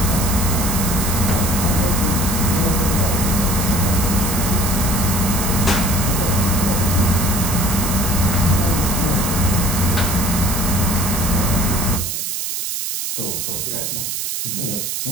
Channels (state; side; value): noise; right; hiss, 3 dB below the sound